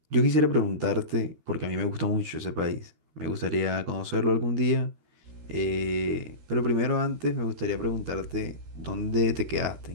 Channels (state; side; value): late; left; 13 ms